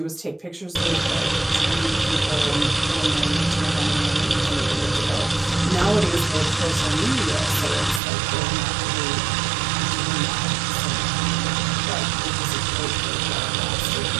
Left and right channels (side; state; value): left; drops out; at 8.0 s